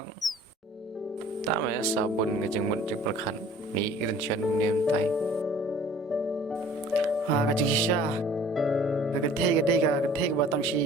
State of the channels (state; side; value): normal; both; correlation 0.50